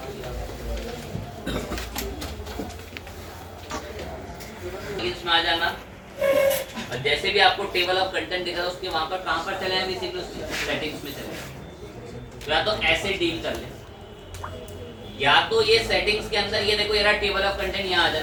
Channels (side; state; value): both; identical; correlation 1.00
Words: इसमें आ जाना और जैसे भी आपको टेबल ऑफ कंटेंट दिखा उसके वहां पर कहां पर चले जाए, सेटिंग्स में चले, या तो ऐसे डील कर ले, या तो ये सेटिंग्स के अंदर ये देखो, ये रहा टेबल ऑफ कंटेंट, यहाँ आ